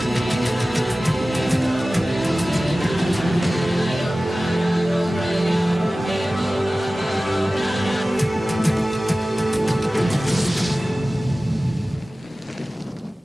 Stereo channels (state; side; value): normal; both; correlation 0.97